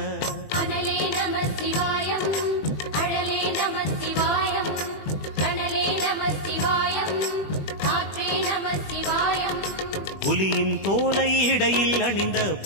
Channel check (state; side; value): late; right; 20 ms